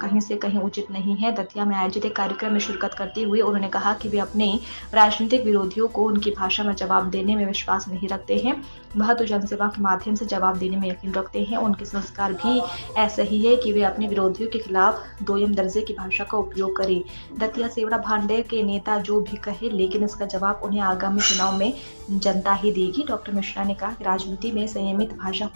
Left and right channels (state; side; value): inverted; both; correlation -1.00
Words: से कहीं उचित नहीं है। दतिया में आयोजित एक कार्यक्रम में शिरकत करते हुए उन्होंने कहा कि वे अपने राजनीतिक विरोधियों को उनकी भाषा में जवाब देने में विश्वास नहीं रखते हैं, वह तो जनसेवा के माध्यम से जवाब देने में यकीन रखते हैं। उनके संस्कार भी ऐसे ही है कि वे अपने विरोधियों के खिलाफ दोयम दर्जे की भाषा का उपयोग करें। दतिया सेवड़ा भांडे के नेता जो भी कहे, लेकिन इसका जवाब उन्हें आगामी चुनाव में जनता ही देगी। डॉक्टर मिश्रा ने कहा कि राजनीति में संयमित भाषा